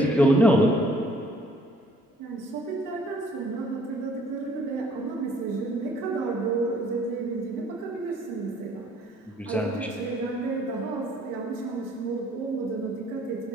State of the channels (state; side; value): normal; both; correlation 0.60